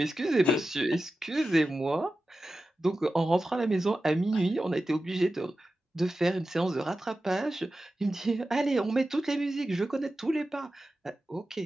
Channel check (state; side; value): normal; both; correlation 0.93